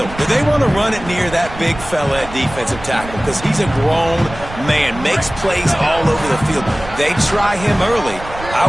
Did they want to run it near that big fella at defensive tackle? Because he's a grown man, makes plays all over the field. They try him early. I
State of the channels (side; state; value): right; noise; rumble, 14 dB below the sound